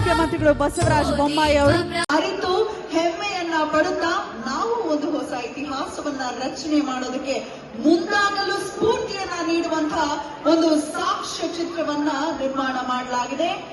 ಬಸವರಾಜ ಬೊಮ್ಮಾಯಿ ಅವರು ಅರಿತು ಹೆಮ್ಮೆಯನ್ನ ಪಡುತ್ತಾ ನಾವು ಒಂದು ಹೊಸ ಇತಿಹಾಸವನ್ನ ರಚನೆ ಮಾಡೋದಕ್ಕೆ ಮುಂದಾಗಲು ಸ್ಫೂರ್ತಿಯನ್ನ ನೀಡುವಂತಹ ಒಂದು ಸಾಕ್ಷ್ಯ ಚಿತ್ರವನ್ನ ನಿರ್ಮಾಣ ಮಾಡಲಾಗಿದೆ.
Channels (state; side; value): identical; both; correlation 1.00